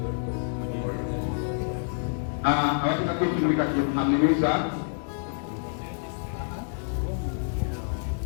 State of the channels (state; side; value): silent; right; digital silence